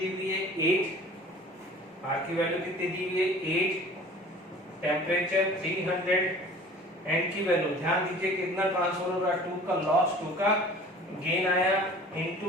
हुई है 8। R की वैल्यू कितनी दी हुई है 8। टेम्परेचर 300। N की वैल्यू ध्यान दीजिए कितना ट्रांसफर हो रहा है 2 का लॉस 2 का गेन आया इनटू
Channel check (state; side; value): normal; both; correlation 0.45